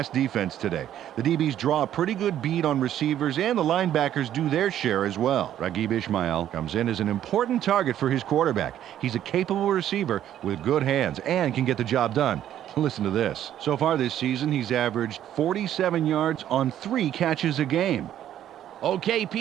defense today. The DBs draw a pretty good beat on receivers, and the linebackers do their share as well. Raghib Ismail comes in as an important target for his quarterback. He's a capable receiver with good hands and can get the job done. Listen to this. So far this season, he's averaged 47 yards on 3 catches a game. Okay,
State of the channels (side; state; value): left; quieter; 11.2 dB